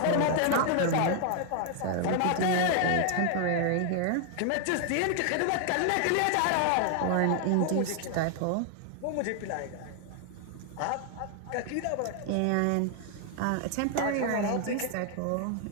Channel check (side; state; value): both; different; correlation 0.00